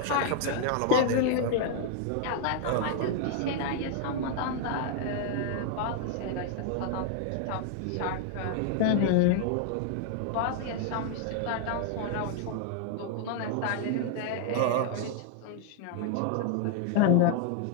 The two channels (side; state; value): both; different; correlation 0.00